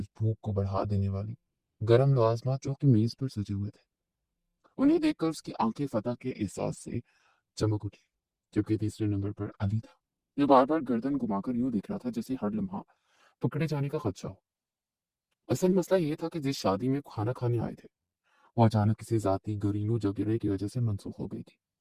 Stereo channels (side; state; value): both; identical; correlation 1.00